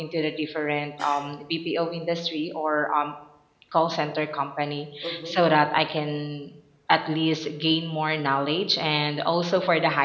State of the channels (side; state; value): both; identical; correlation 1.00